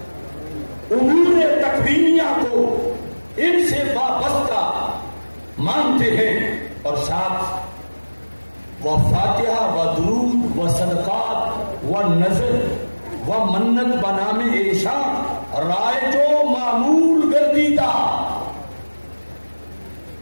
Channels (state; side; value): inverted; both; correlation -1.00